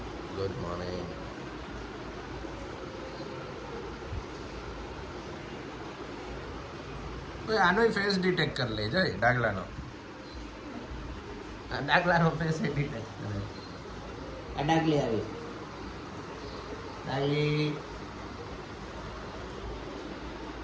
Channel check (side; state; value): both; identical; correlation 1.00